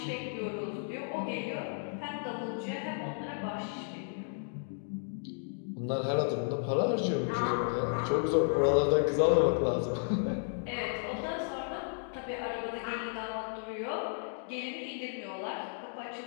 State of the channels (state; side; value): silent; right; digital silence